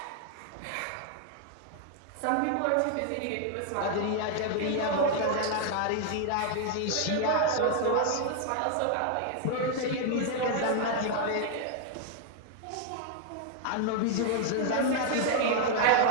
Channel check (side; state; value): both; different; correlation 0.00